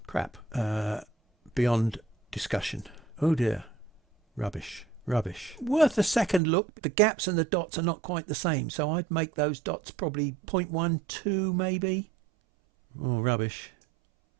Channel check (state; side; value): drops out; left; at 6.4 s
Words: crap, beyond discussion. Oh dear. Rubbish. Rubbish. Worth a second look. The gaps and the dots are not quite the same. So I'd make those dots probably 0.12 maybe. Oh, rubbish.